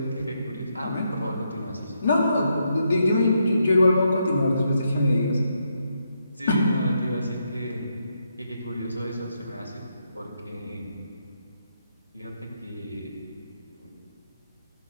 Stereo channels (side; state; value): both; inverted; correlation -0.80